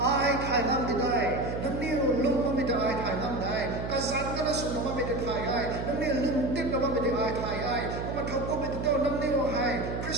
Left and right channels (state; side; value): noise; right; hum, 5 dB below the sound